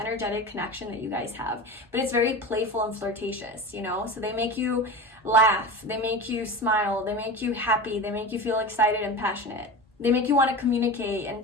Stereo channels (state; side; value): normal; both; correlation 0.29